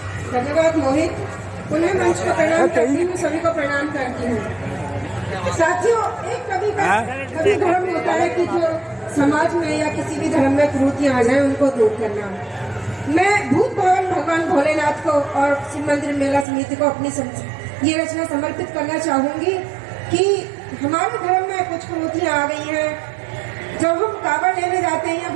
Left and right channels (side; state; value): left; drops out; at 16.4 s